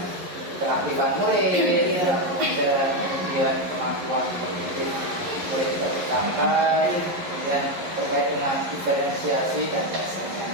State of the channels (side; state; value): left; late; 11 ms